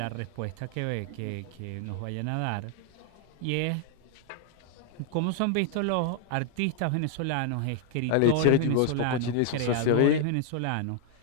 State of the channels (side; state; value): both; different; correlation 0.00